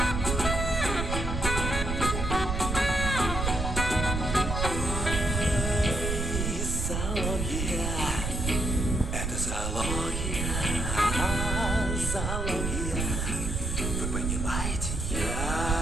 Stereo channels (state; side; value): noise; right; rumble, 2 dB below the sound